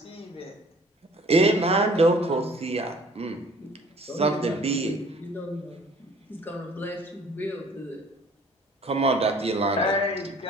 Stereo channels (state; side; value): normal; both; correlation 0.53